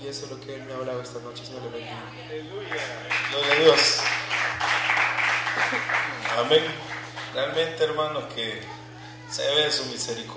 Y eso es lo que Él me ha hablado esta noche. Señor, le bendiga. Aleluya. Gloria a Dios. Amén. Realmente, hermanos, que se ve su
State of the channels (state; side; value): identical; both; correlation 1.00